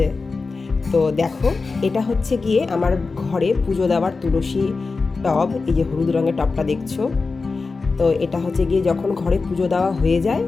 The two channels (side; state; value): right; quieter; 4.1 dB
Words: তো দেখো, এটা হচ্ছে গিয়ে আমার ঘরে পুজো দেওয়ার তুলসী টব। এই যে হলুদ রঙের টবটা দেখছো, তো এটা হচ্ছে গিয়ে যখন ঘরে পুজো দেওয়া হয়ে যায়